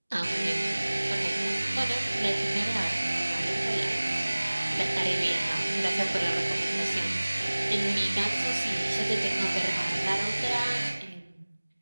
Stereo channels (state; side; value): inverted; both; correlation -1.00